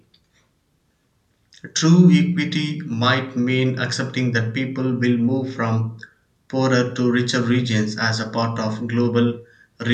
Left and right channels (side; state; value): both; identical; correlation 1.00